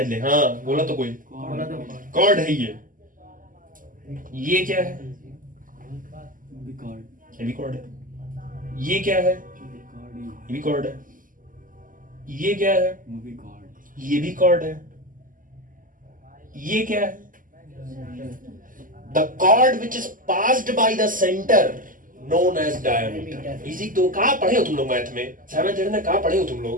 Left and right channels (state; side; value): late; left; 0.39 ms